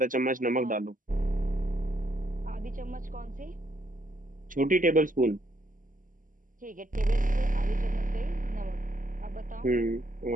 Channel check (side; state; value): left; late; 0.39 ms